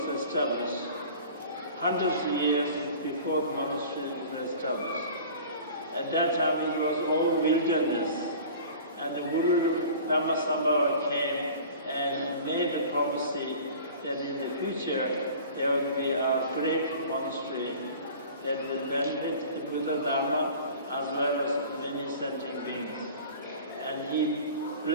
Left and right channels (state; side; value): inverted; both; correlation -0.43